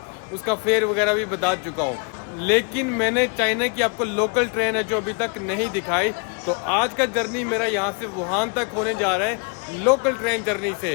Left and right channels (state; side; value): quieter; right; 36.0 dB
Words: उसका फेयर वगैरह भी बता चुका हूँ। लेकिन मैंने चाइना की आपको लोकल ट्रेन है जो अभी तक नहीं दिखाई। तो आज का जर्नी मेरा यहाँ से वुहान तक होने जा रहा है लोकल ट्रेन जर्नी